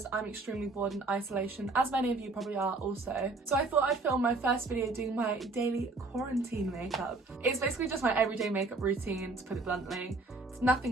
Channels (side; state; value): left; quieter; 3.4 dB